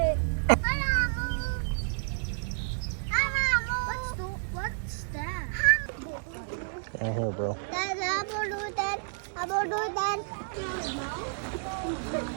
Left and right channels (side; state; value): left; silent; digital silence